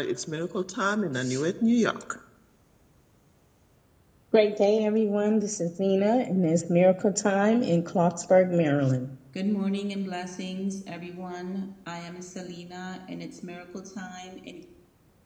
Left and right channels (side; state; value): both; identical; correlation 1.00